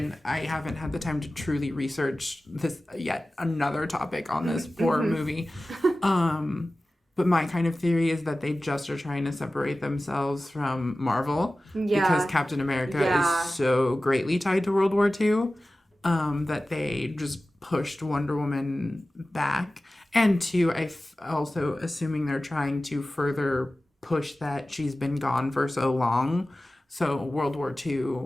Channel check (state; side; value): normal; both; correlation 0.96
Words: I haven't had the time to truly research this yet, another topic on this poor movie. But my kind of theory is that they just are trying to separate themselves from Marvel because Captain America is so greatly tied to World War II that they just pushed Wonder Woman back. And two, also assuming they're trying to further push that she's been gone for so long. So World War